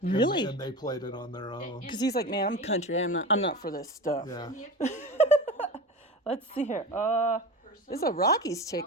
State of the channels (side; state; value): both; normal; correlation 0.29